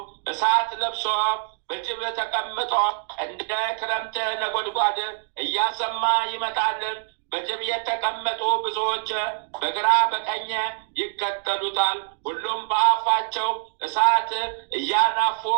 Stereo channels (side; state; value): left; silent; 58 dB below the other